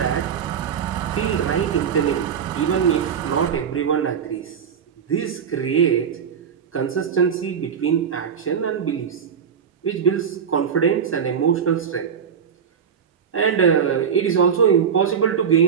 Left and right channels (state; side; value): quieter; left; 7.5 dB